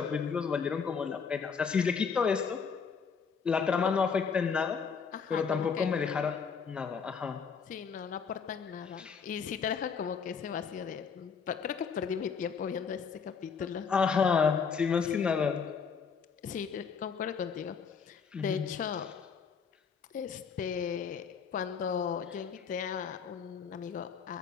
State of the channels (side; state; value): right; quieter; 6.1 dB